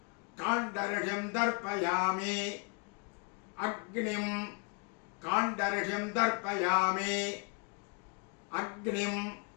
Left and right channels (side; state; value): right; quieter; 33.4 dB